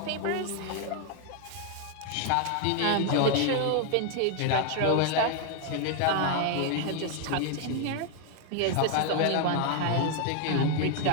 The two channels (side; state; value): both; different; correlation 0.00